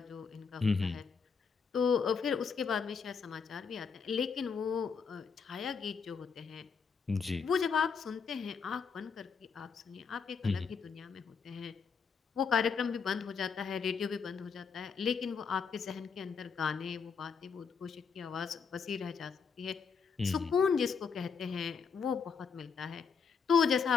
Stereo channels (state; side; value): quieter; right; 5.8 dB